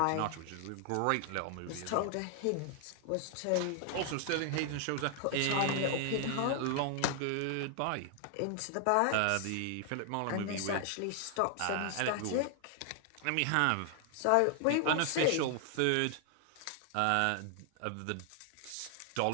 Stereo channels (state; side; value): different; both; correlation 0.00